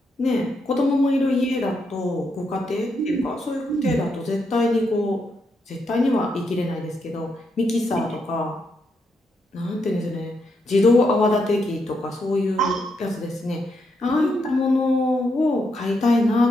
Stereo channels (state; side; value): normal; both; correlation 0.80